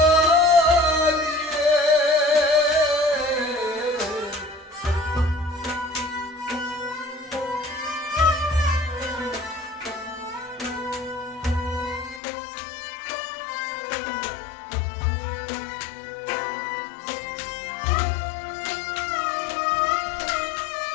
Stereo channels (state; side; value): drops out; right; at 12.2 s